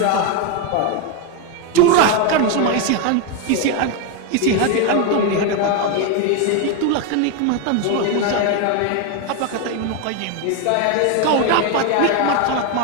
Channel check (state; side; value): different; both; correlation 0.02